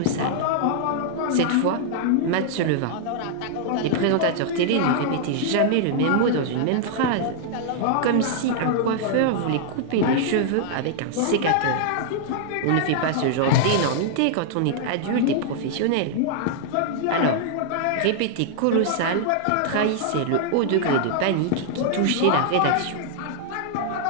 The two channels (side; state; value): both; different; correlation -0.01